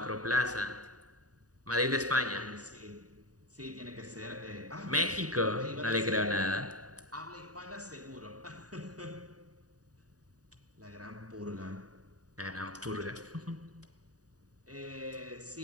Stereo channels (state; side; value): late; left; 0.67 ms